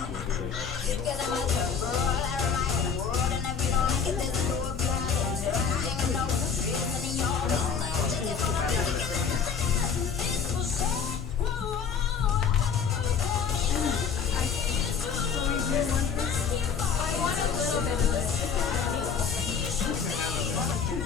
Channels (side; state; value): right; quieter; 6.5 dB